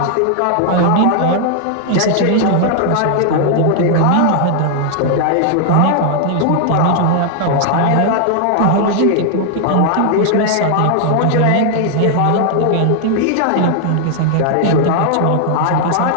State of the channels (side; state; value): both; different; correlation 0.00